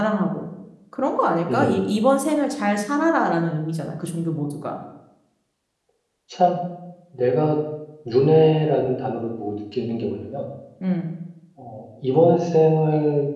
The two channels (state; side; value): identical; both; correlation 1.00